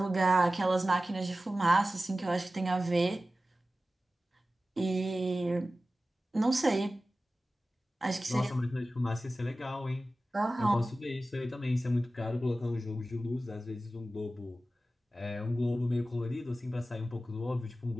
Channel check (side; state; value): both; normal; correlation 0.95